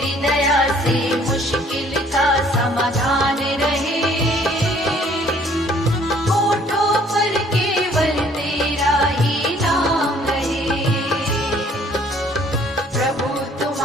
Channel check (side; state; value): both; normal; correlation 0.59